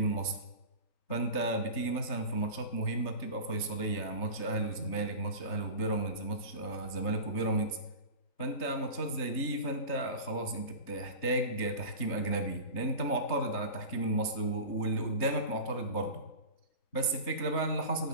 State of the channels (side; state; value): right; late; 3.3 ms